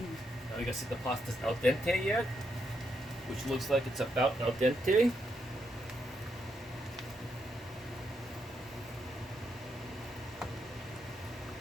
Now we gotta see if the pasta's al dente yet, which looks like it's about al dente.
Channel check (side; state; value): both; normal; correlation 0.79